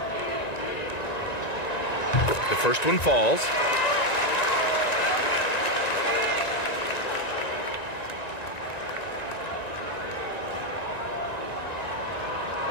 The first one falls.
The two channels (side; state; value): right; late; 1.9 ms